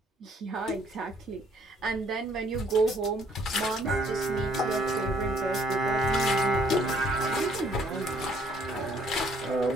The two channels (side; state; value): both; normal; correlation 0.63